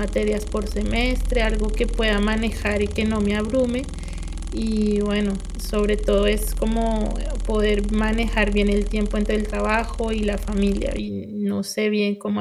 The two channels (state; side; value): identical; both; correlation 1.00